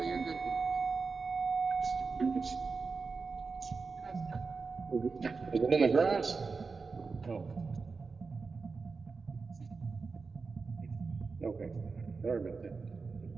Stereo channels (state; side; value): quieter; left; 4.5 dB